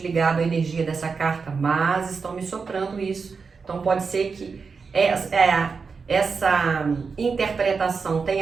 à energia dessa carta, mas estão me soprando isso. Então pode ser que essa interpretação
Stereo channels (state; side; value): quieter; left; 5.1 dB